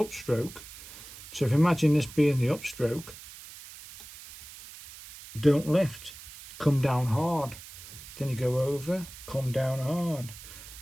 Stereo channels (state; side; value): noise; right; hiss, 16 dB below the sound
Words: so if you imagine this being the upstroke, don't lift, come down hard. Then you go over, come down hard.